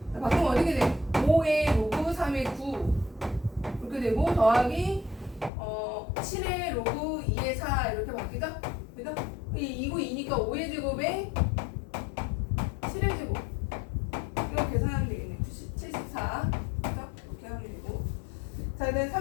자, 바꾸면 어떻게 돼? 5의 로그 3의 9 이렇게 되고 더하기 7의 로그 2의 4 이렇게 바뀌죠? 그죠? 2고 2니까 5의 제곱에 7의 제곱 이거 계산하면 되겠네. 74 그죠? 이렇게 하면 되고. 자, 그다음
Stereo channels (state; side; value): drops out; right; at 5.5 s